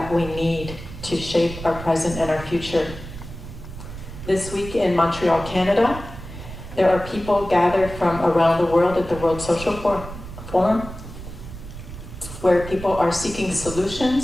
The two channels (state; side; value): noise; right; rumble, 12 dB below the sound